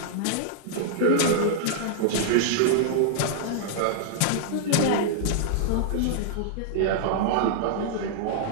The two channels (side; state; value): both; different; correlation -0.01